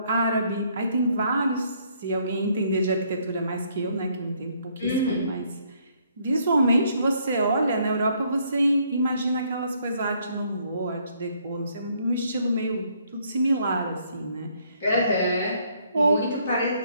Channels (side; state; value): both; inverted; correlation -0.68